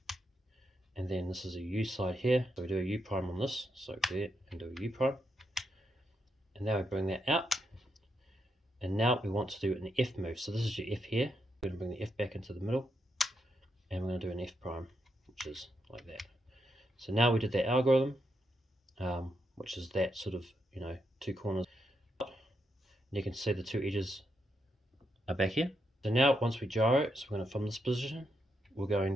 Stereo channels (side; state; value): both; normal; correlation 0.81